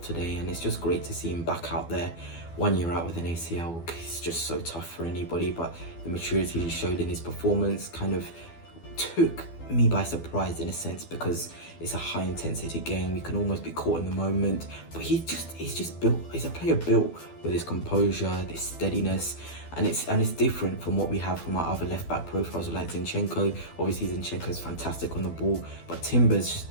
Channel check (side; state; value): right; late; 12 ms